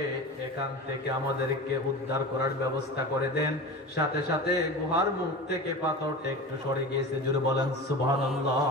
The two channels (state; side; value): normal; both; correlation 0.30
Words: এখান থেকে আমাদেরকে উদ্ধার করার ব্যবস্থা করে দেন। সাথে সাথে গুহার মুখ থেকে পাথরটা একটু সরে গিয়েছে। জোরে বলেন সুবহানাল্লাহ।